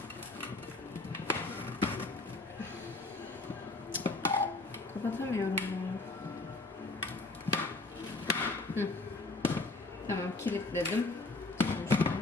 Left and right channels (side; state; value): right; quieter; 3.2 dB